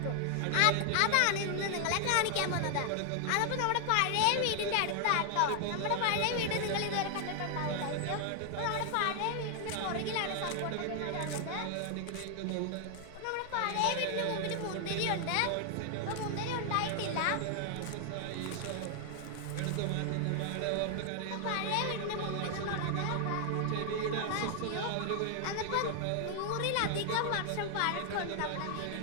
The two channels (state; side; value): different; both; correlation 0.00